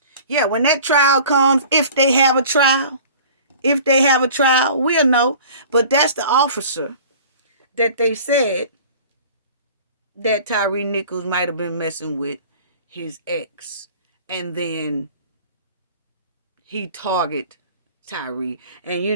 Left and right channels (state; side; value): inverted; both; correlation -0.45